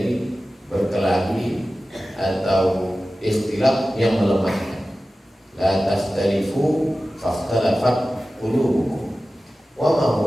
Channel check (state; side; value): normal; both; correlation 0.95